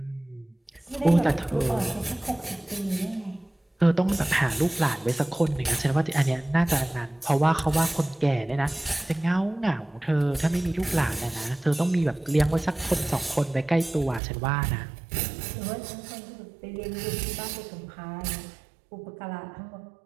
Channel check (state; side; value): drops out; left; at 14.2 s